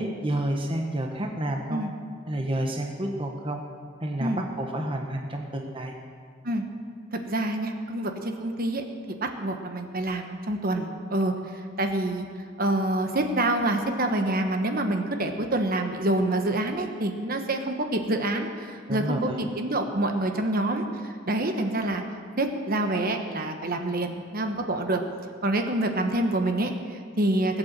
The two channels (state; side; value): normal; both; correlation 0.47